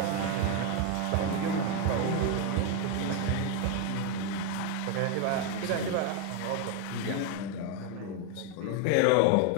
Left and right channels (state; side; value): different; both; correlation 0.01